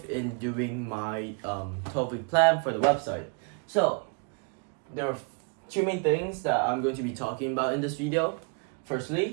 in doing my 12-week plan for the website. So, there are two main things that I'm going to be talking about in this video.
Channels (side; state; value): left; quieter; 37.2 dB